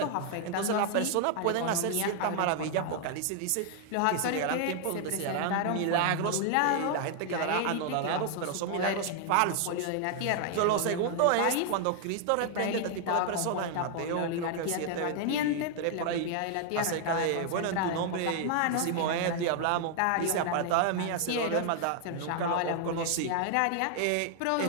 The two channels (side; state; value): both; different; correlation 0.00